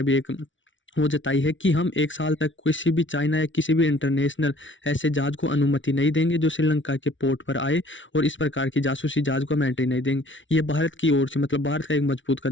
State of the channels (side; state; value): right; late; 0.56 ms